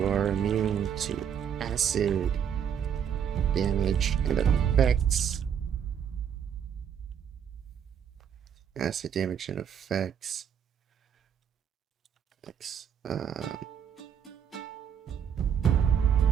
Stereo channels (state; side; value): quieter; left; 8.3 dB